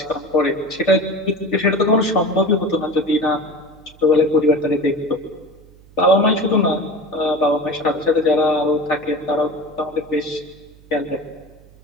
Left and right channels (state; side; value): noise; right; hum, 25 dB below the sound